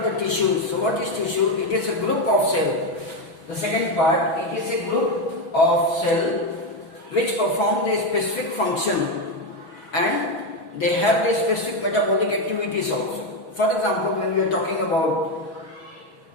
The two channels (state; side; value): late; right; 6.1 ms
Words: the tissue, so what is tissue? It is a group of cell. The second part, it is a group of cell which perform a specific function and they have their specific metabolic activities also. For example, when we are talking about